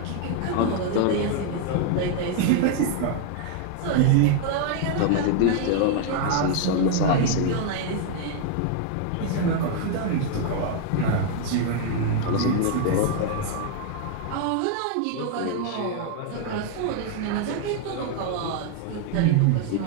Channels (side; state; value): both; different; correlation 0.00